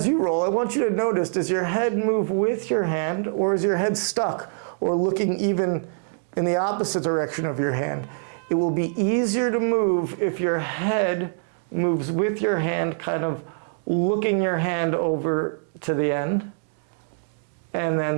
you roll, I want you to notice, does your head move with your hand, or is your head stuck or looking even in the opposite direction of your hand? It will be easier to move if your head moves with your hand, kind of looking your hand over to the end, and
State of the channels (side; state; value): left; silent; digital silence